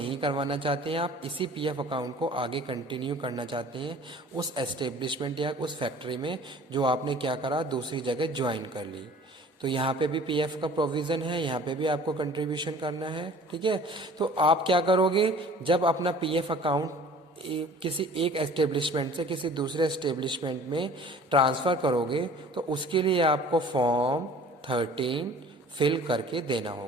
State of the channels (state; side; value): normal; both; correlation 0.48